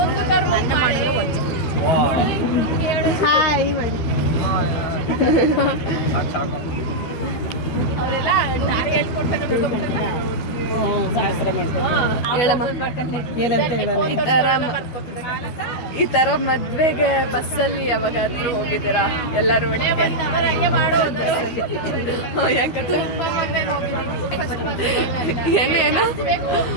ಹಾಯ್ ಮಾಡಿ ಅವರೆಲ್ಲ ದಾರಿ ಹೇಳ್ಕೊಡ್ತಾರೆ. ಈ ತರ ಮದ್ವೆಗೆ ಬಸ್ಸಲ್ಲಿ ಯಾವಾಗಾದ್ರೂ ಹೋಗಿದ್ದೀರಾ ಎಲ್ಲರೂ? ಯಾಕಂದ್ರೆ ಏನೇನು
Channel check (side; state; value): right; late; 12 ms